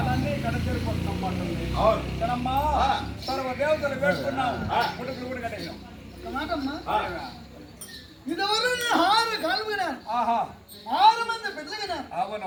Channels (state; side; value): identical; both; correlation 1.00